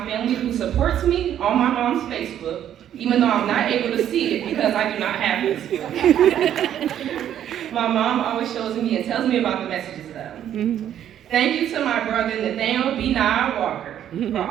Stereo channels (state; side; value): quieter; left; 10.5 dB